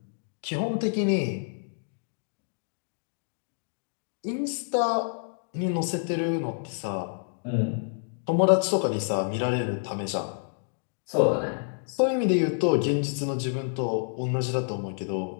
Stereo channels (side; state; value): right; silent; digital silence